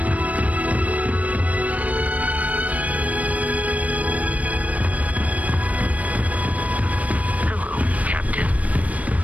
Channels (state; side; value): late; left; 0.068 ms